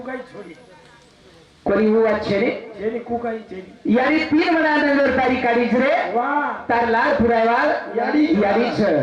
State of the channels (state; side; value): identical; both; correlation 1.00